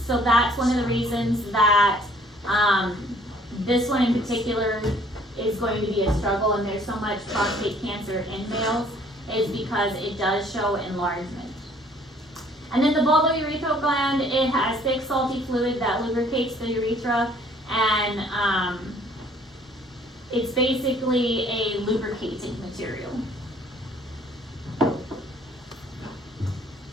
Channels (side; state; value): both; normal; correlation 0.59